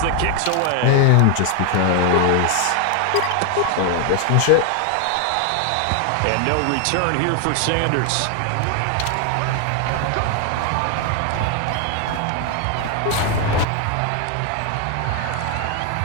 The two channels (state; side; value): different; both; correlation 0.00